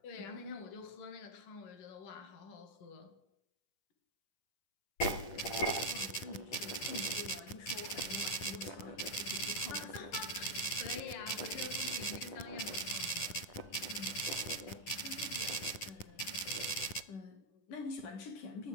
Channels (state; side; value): late; right; 10 ms